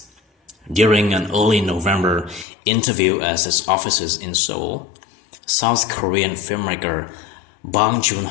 During an early November interview at his offices in Seoul, South Korean filmmaker Bong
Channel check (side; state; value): right; drops out; at 2.5 s